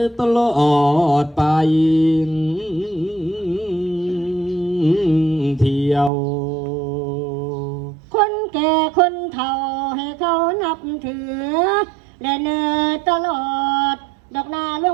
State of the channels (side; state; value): left; drops out; at 6.1 s